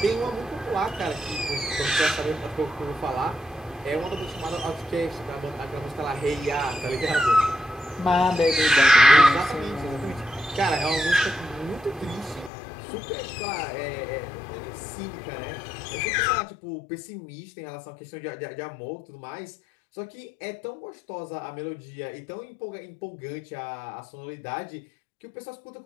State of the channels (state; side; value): drops out; right; at 12.5 s